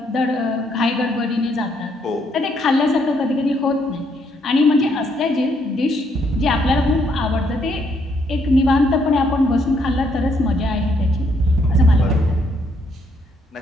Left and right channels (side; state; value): both; normal; correlation 0.72